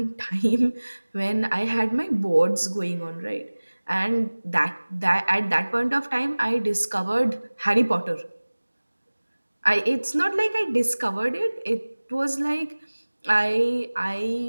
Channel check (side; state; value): both; inverted; correlation -1.00